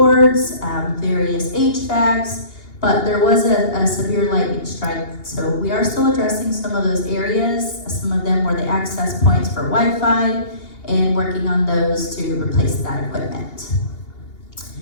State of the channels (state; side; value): late; right; 2.8 ms